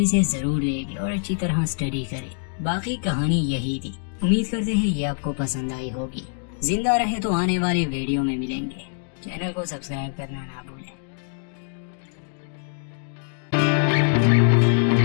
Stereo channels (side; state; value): right; silent; digital silence